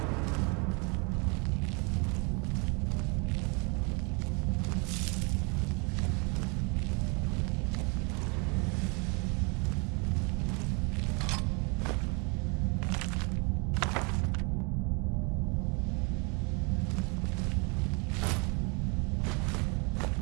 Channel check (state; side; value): quieter; left; 32.4 dB